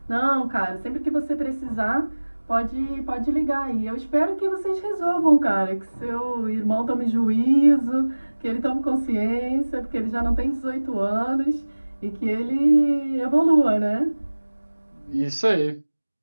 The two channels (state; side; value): inverted; both; correlation -1.00